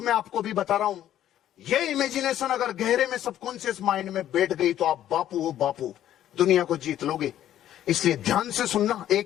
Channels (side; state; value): right; quieter; 11.8 dB